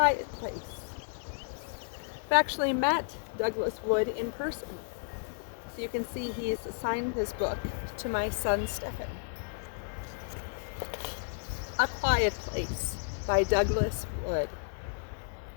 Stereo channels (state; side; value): silent; right; digital silence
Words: Place. I've actually met Douglas Wood in person. So you can see he's assigned this book to my son Stephen. A Quiet Place by Douglas Wood.